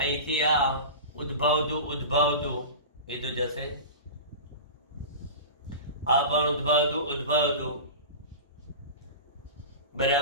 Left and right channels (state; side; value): inverted; both; correlation -0.30